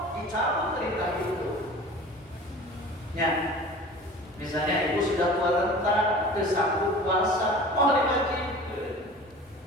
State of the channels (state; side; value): normal; both; correlation 0.40